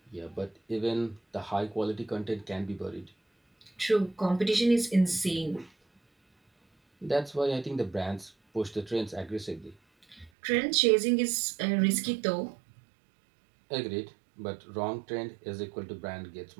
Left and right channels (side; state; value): left; drops out; at 10.3 s